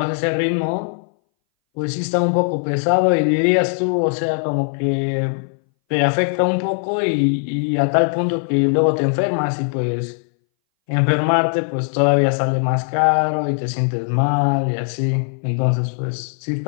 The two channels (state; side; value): silent; right; 62 dB below the other